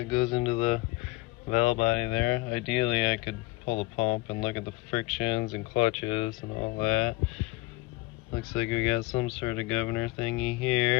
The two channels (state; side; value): quieter; right; 20.8 dB